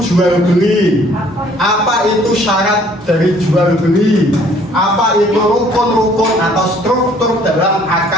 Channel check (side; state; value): both; normal; correlation 0.58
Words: jual beli? Apa itu syarat dari jual beli? Apa itu rukun-rukun atau struktur dalam